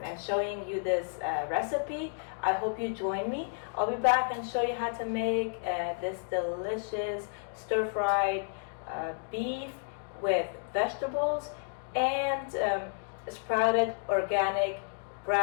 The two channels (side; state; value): right; silent; digital silence